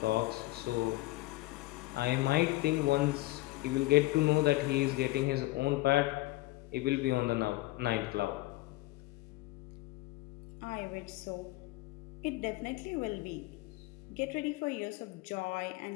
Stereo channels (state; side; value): quieter; right; 19.5 dB